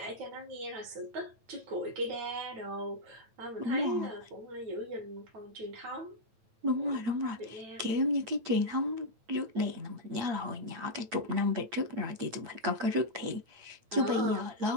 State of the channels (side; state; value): left; late; 9.0 ms